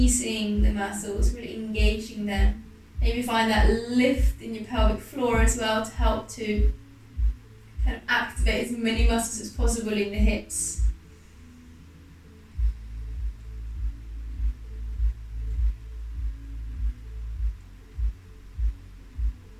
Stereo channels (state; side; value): identical; both; correlation 1.00